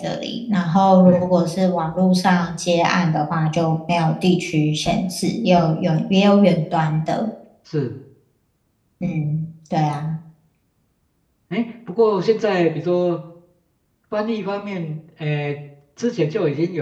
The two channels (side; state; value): both; identical; correlation 1.00